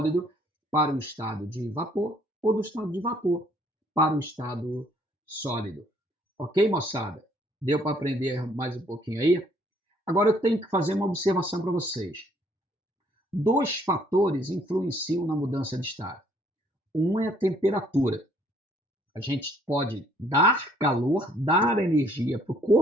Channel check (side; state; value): both; normal; correlation 0.63